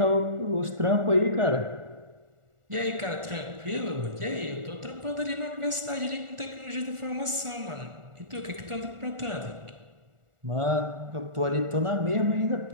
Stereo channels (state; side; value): late; left; 1.4 ms